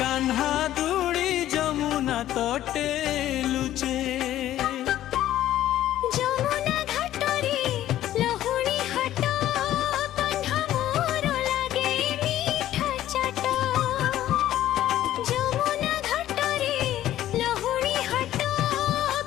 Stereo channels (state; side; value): quieter; right; 13.1 dB